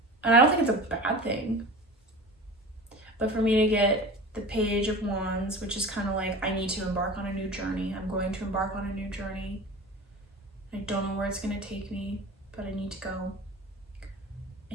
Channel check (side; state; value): both; normal; correlation 0.35